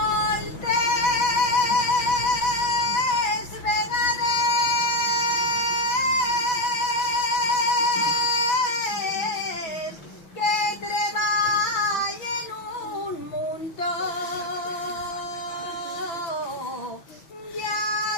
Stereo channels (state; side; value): late; right; 6.1 ms